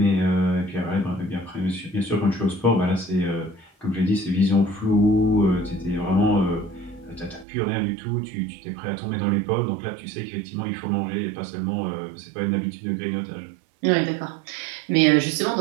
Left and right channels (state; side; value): drops out; left; at 7.5 s